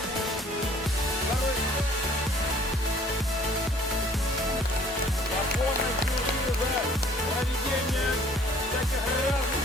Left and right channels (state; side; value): normal; both; correlation 0.56